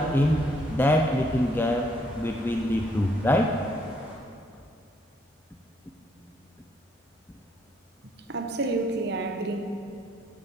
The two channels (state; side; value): normal; both; correlation 0.70